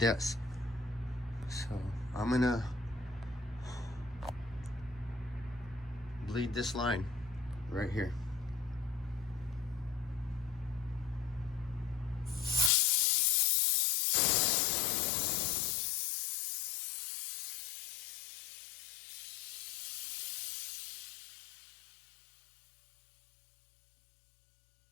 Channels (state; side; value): drops out; right; at 12.7 s